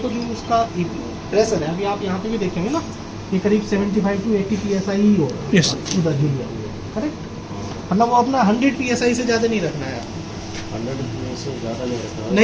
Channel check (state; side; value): identical; both; correlation 1.00